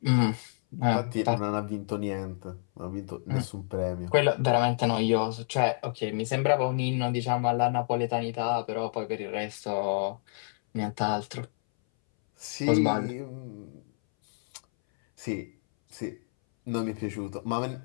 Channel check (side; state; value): right; silent; 59 dB below the other